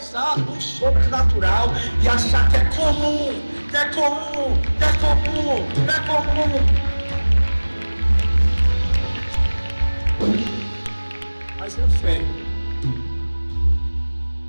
o sobrenatural e achar que é comum, que é comum, que é comum, que é comum. Mas eu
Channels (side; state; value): both; inverted; correlation -1.00